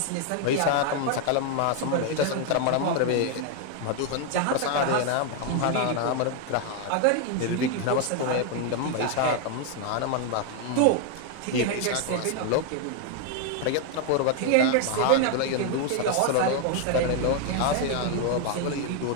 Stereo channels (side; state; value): both; different; correlation 0.00